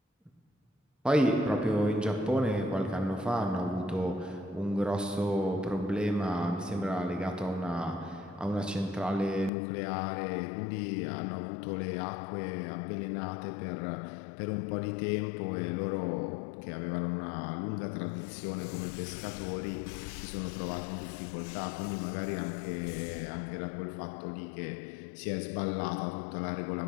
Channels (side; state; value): right; drops out; at 9.5 s